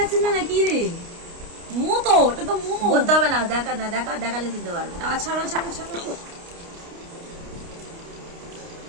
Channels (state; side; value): late; left; 29 ms